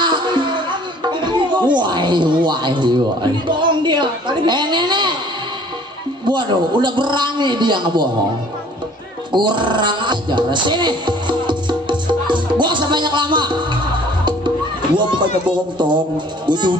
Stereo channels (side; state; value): both; normal; correlation 0.53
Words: Wah. Bohong dia. Nenek. Waduh, udah berani dia ngebohong. Kurang ajar. Sini. Gua sebanyak lama. Gua bukannya bohong tong. Gua